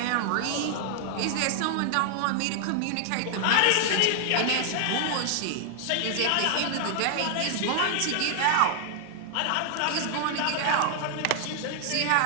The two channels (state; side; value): different; both; correlation 0.00